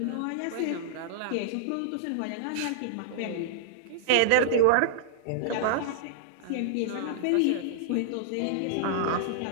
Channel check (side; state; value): both; different; correlation -0.02